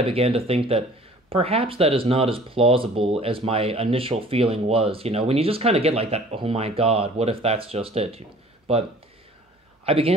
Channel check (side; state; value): both; normal; correlation 0.50